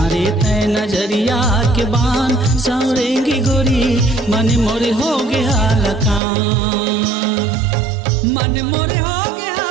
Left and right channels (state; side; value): drops out; left; at 6.2 s